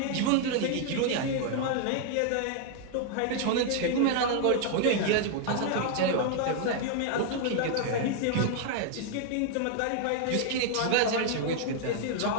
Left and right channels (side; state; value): both; different; correlation 0.00